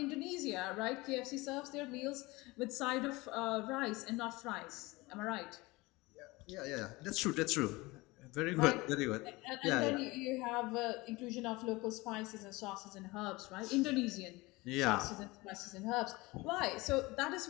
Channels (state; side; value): quieter; right; 22.3 dB